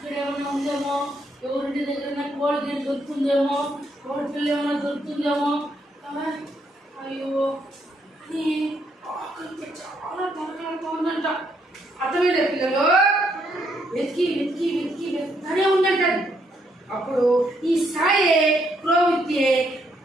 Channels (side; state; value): both; normal; correlation 0.74